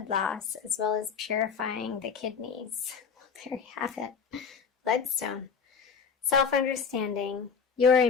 loss, as well as purifying the kidneys. Well, there you have it. Bloodstone. Self-understanding. You're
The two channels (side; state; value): right; quieter; 6.1 dB